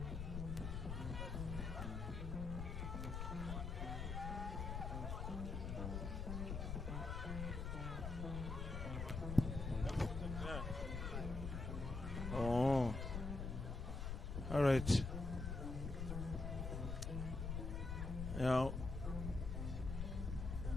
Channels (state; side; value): noise; left; rumble, 3 dB below the sound